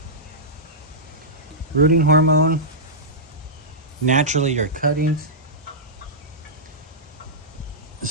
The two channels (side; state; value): both; normal; correlation -0.14